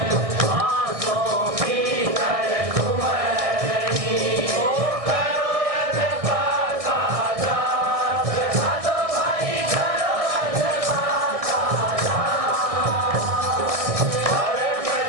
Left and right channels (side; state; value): left; late; 1.6 ms